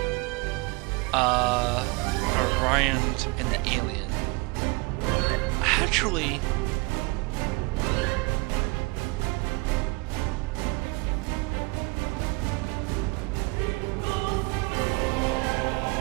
Orions, and the Alien. Actually,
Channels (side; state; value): left; quieter; 27.0 dB